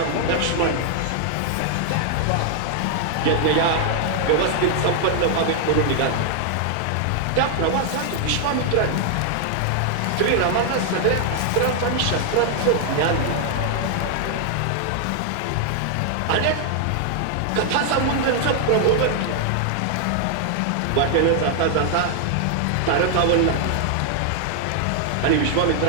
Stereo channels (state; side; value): different; both; correlation 0.00